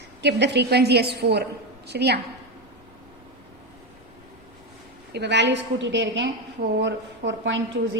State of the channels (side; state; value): both; normal; correlation 0.13